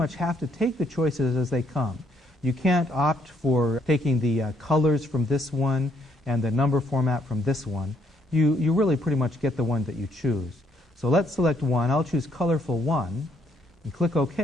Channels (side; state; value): both; normal; correlation 0.71